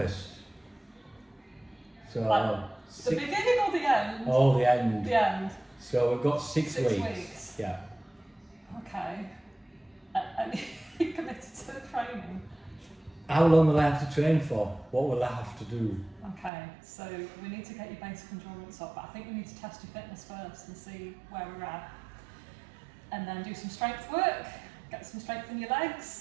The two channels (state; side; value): drops out; left; at 16.5 s